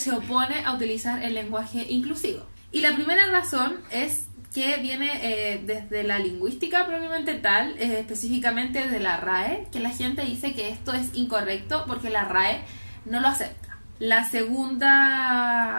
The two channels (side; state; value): both; inverted; correlation -1.00